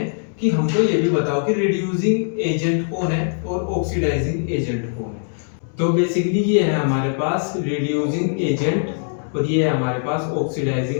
कि हमको ये भी बताओ कि रिड्यूसिंग एजेंट कौन है और ऑक्सीडाइजिंग एजेंट कौन है। तो बेसिकली ये है हमारे पास रिड्यूसिंग एजेंट और ये है हमारे पास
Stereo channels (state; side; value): silent; right; digital silence